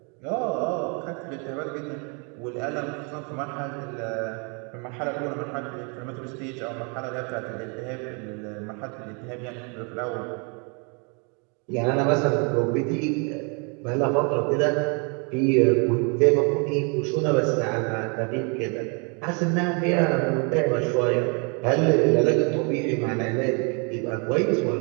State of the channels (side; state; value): left; quieter; 35.2 dB